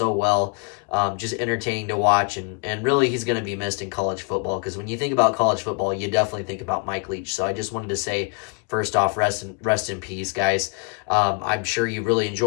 well. Just entertaining to watch, and really he's going to be missed in college football because when you think about college football, you definitely think about Mike Leach. So I just wanted to say, first off, rest in peace, guys. I'm sure you really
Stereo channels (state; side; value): quieter; right; 32.2 dB